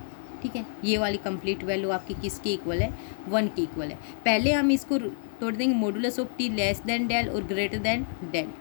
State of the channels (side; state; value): right; silent; digital silence